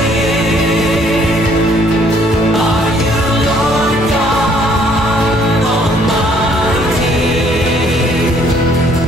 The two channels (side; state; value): both; normal; correlation 0.63